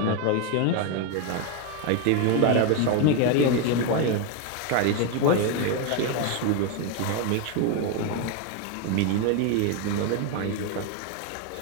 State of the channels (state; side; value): different; both; correlation 0.02